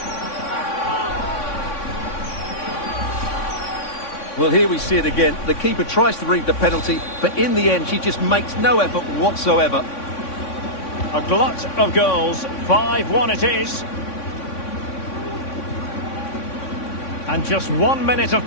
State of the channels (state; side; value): late; right; 3.6 ms